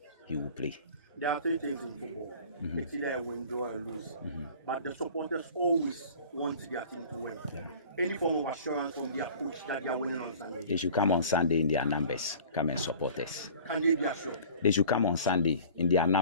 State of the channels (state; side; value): inverted; both; correlation -0.45